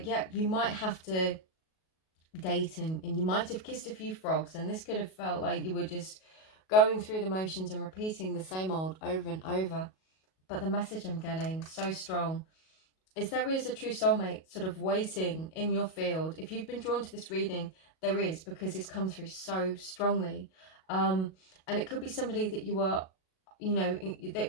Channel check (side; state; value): right; late; 37 ms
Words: yeah, you might have to date and you might have kissed a few frogs, and this could have felt like you were just going through the motions and repeating the same old over and over. But the message I'm getting so strong is there is a true soulmate sort of waiting in your field. If you've been drawn to this reading, there is, because it's come through so strongly. And it could be somebody that you are, you know,